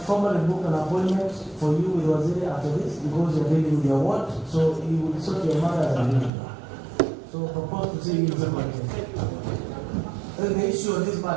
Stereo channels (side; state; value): left; drops out; at 6.3 s